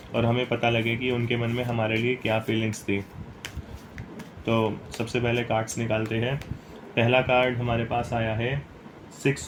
और हमें पता लगे कि उनके मन में हमारे लिए क्या फीलिंग्स थी। तो सबसे पहले कार्ड्स निकालते हैं। पहला कार्ड हमारे पास आया है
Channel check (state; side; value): identical; both; correlation 1.00